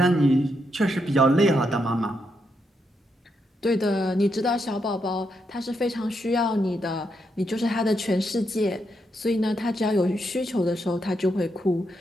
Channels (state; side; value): normal; both; correlation 0.81